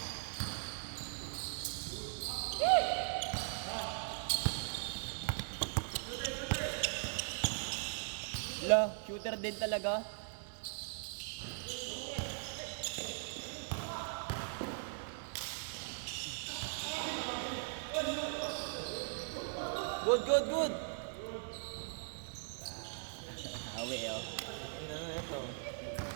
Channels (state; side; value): silent; left; 51 dB below the other